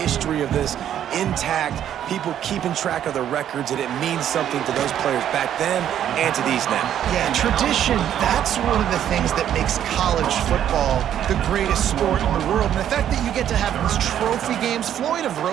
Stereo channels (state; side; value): quieter; left; 10.4 dB